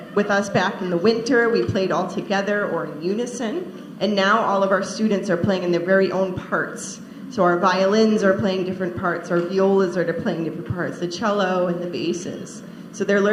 with us back in the winter, we played all together or in unison. And now all of our students are playing in their very own parts. So our violins are playing different parts, our violas are playing different parts, the cello and the basses. So they're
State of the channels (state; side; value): identical; both; correlation 1.00